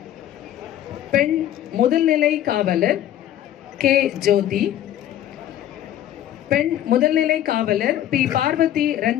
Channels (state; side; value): quieter; right; 11.9 dB